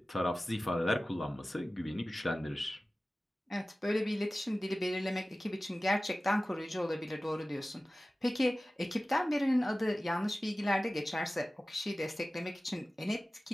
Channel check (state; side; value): normal; both; correlation 0.96